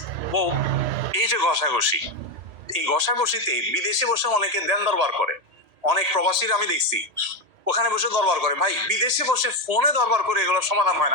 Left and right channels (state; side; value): late; left; 3.0 ms